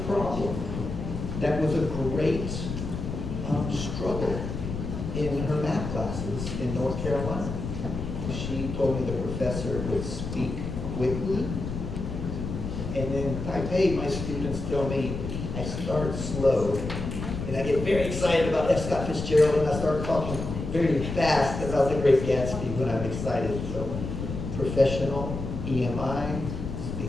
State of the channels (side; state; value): left; noise; rumble, 6 dB below the sound